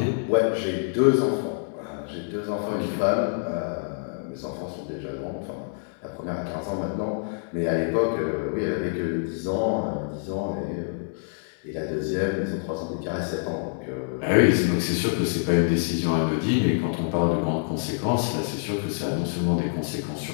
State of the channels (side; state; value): right; silent; digital silence